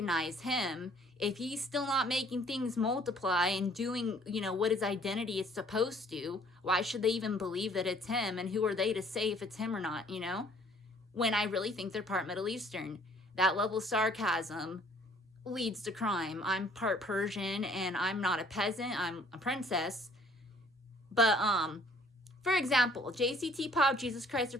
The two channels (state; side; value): normal; both; correlation 0.58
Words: him if he's still not making things multiply and doing, you know, what his identity is supposed to? Why should they even believe that it's him? And who are they to say if it's him or not, you know? When I really think they're part Middle Eastern. That level of sarcasm leads to crime. I'm part Persian, and I'm not a peasant. I'm a princess. But, for example, JCT Pop, Jesus Christ, the